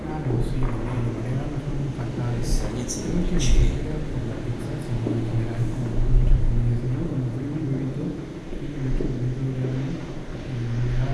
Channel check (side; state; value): both; identical; correlation 1.00